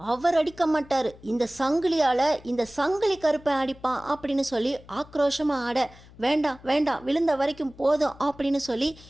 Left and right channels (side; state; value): left; noise; hum, 22 dB below the sound